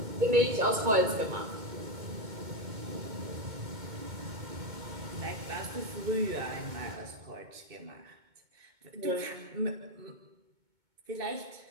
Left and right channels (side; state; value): left; late; 2.2 ms